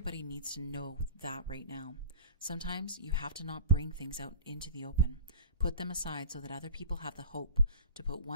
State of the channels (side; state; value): both; inverted; correlation -0.38